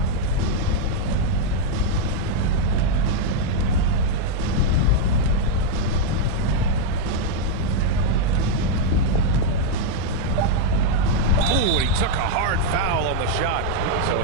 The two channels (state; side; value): different; both; correlation 0.00